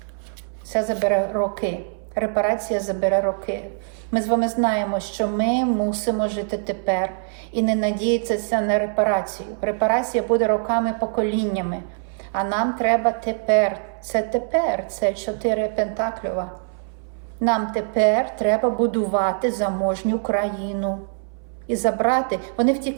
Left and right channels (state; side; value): silent; left; 62 dB below the other